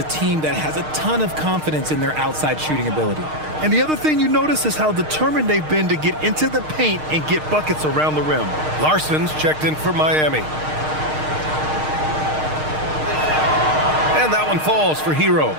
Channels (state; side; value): late; left; 6.5 ms